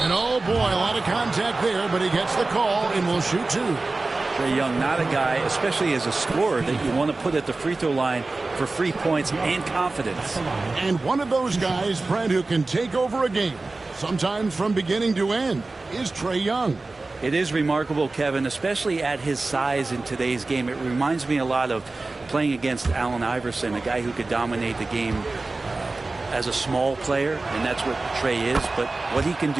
And oh boy, a lot of contact there, but he gets the call and will shoot 2. Trae Young, not a guy, especially as a scorer, that you want to put at the free throw line for free points and confidence. And one of those guys, Brent, who can take over a game, sometimes from beginning to end, is Trae Young. It is remarkable, Kevin, especially at his size in today's game. It reminds me a lot of playing against Allen Iverson, a guy who could dominate the game as a small player, and that's what Trae is. But what he can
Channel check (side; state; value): left; quieter; 3.4 dB